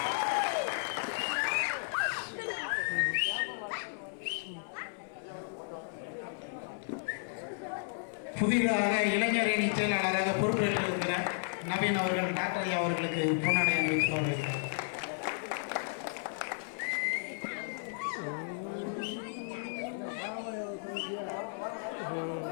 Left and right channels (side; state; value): right; silent; 55 dB below the other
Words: புதிதாக இளைஞரணி செயலாளராக பொறுப்பேற்றிருக்கிற நவீன் அவர்கள் டாக்டர் ஐயா அவர்களுக்கு பொன்னாடை அணிவித்து வருகிறார்.